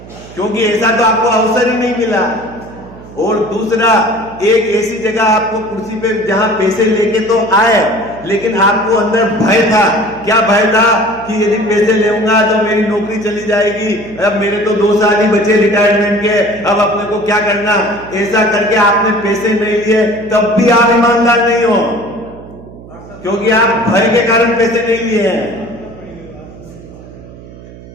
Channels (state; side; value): noise; right; hum, 18 dB below the sound